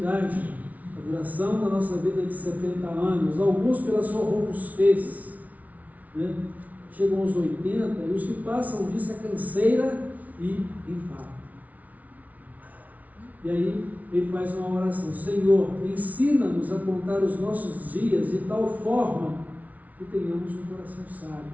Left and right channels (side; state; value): left; late; 0.072 ms